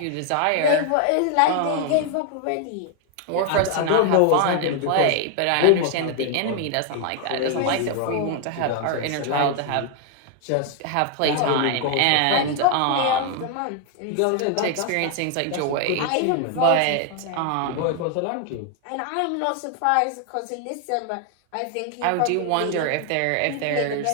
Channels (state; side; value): different; both; correlation 0.00